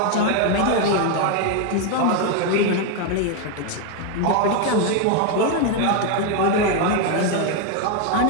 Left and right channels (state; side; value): different; both; correlation 0.01